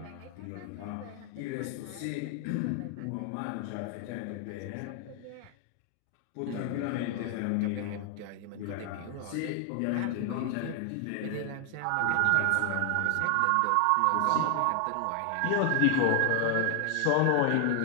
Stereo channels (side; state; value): both; different; correlation 0.00